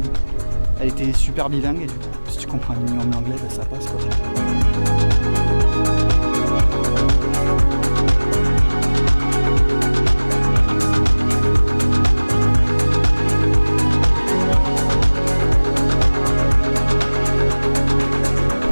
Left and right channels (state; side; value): inverted; both; correlation -1.00